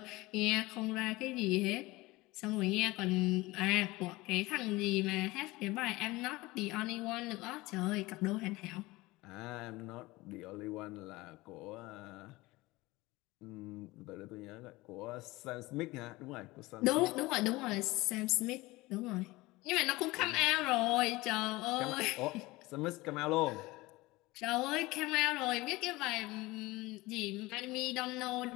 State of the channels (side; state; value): right; quieter; 20.8 dB